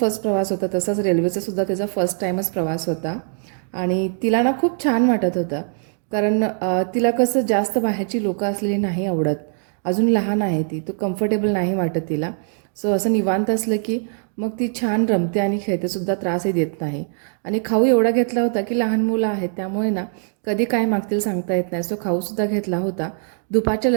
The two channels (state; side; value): silent; left; 57 dB below the other